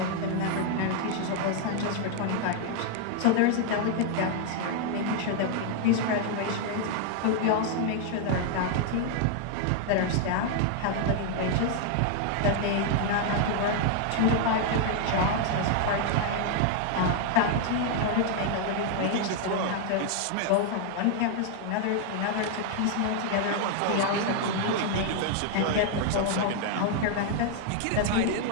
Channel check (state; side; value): different; both; correlation 0.00